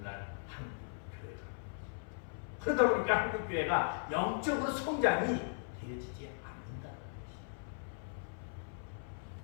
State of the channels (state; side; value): silent; right; 52 dB below the other